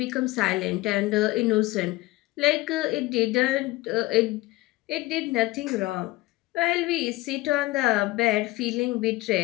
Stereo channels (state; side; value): quieter; right; 19.5 dB